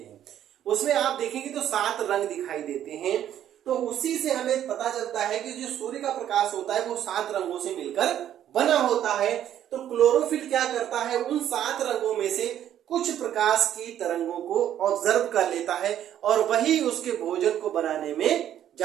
हैं, उसमें आप देखेंगे तो 7 रंग दिखाई देते हैं। तो उसी से हमें पता चलता है कि जो सूर्य का प्रकाश होता है वो 7 रंगों से मिलकर बना होता है। तो क्लोरोफिल क्या करता है? उन 7 रंगों में से कुछ प्रकाश की तरंगों को ऑब्जर्व कर लेता है, और वही उसके भोजन को बनाने में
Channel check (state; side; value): quieter; left; 10.9 dB